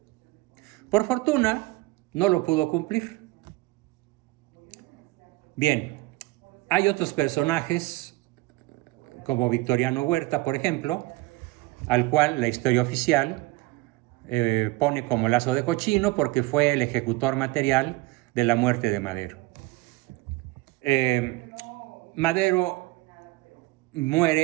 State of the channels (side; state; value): left; quieter; 20.2 dB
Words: Por fortuna, no lo pudo cumplir. Bien, hay otros personajes, como Victoriano Huerta, por ejemplo, al cual la historia oficial pone como lazo de cochino porque fue el ejecutor material de la muerte de Madero. Madero